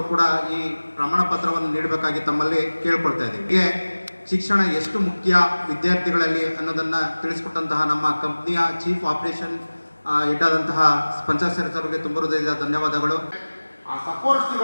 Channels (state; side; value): inverted; both; correlation -1.00